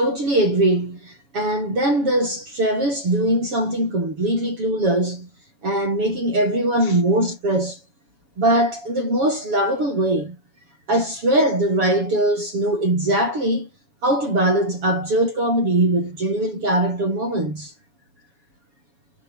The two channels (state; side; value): late; left; 7.1 ms